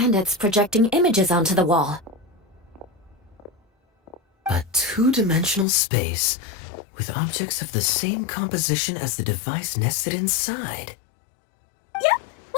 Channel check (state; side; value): drops out; right; at 5.7 s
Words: it's projecting images onto the wall. A two-dimensional space with objects of the same composition as the device nested inside. Yep,